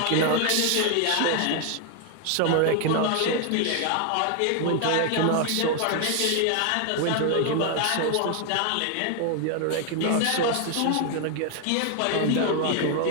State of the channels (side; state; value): both; different; correlation 0.01